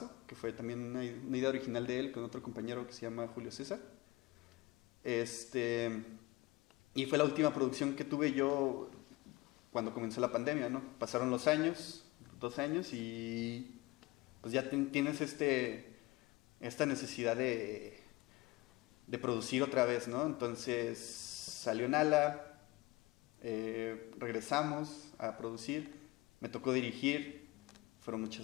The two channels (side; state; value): right; quieter; 21.8 dB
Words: que fue también una idea original de él con otro compañero que se llama Julio César. Y fue la última producción que tuve yo cuando comenzó la pandemia, ¿no? Pasaron los años, 2 años, y pues ya tienes esta necesidad de producir otra vez, ¿no? Entonces salió Nala, regresamos a producir, me tocó dirigir, fueron